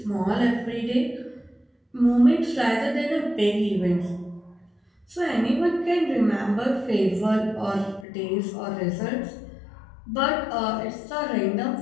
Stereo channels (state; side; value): drops out; right; at 8.1 s